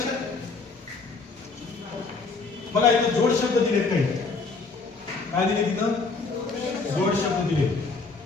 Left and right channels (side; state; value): right; quieter; 4.2 dB